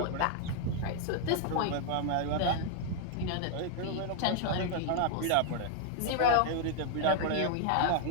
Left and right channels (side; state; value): both; different; correlation 0.00